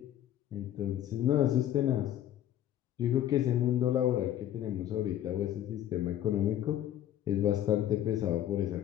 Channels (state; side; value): quieter; right; 11.7 dB